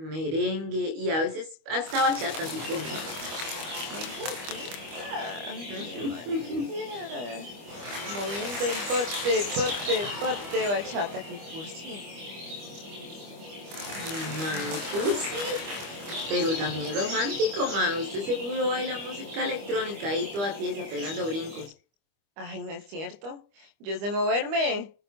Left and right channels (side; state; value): left; late; 25 ms